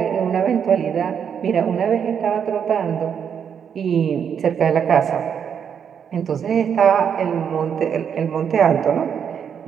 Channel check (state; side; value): quieter; left; 7.7 dB